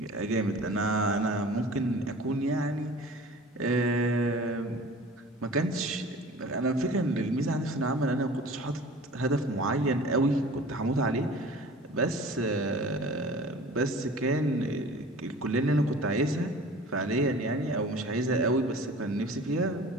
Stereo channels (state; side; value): normal; both; correlation 0.43